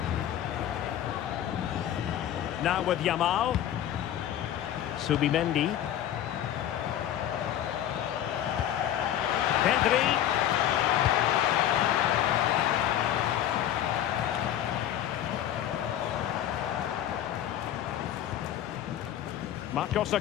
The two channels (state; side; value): quieter; right; 11.3 dB